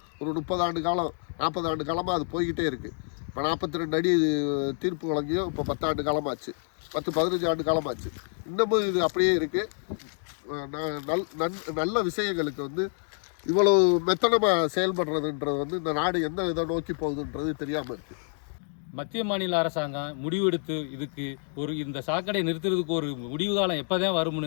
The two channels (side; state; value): right; silent; 59 dB below the other